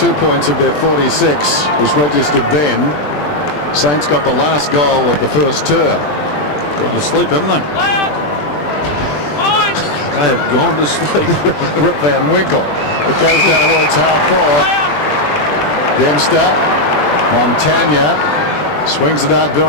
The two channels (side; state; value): right; late; 20 ms